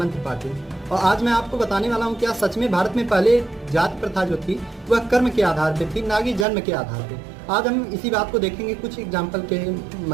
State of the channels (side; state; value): left; drops out; at 6.5 s